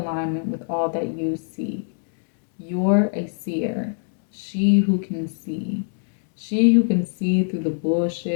with all that you see. You're a seer, she who can see. She who can see through the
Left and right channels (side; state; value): right; silent; 63 dB below the other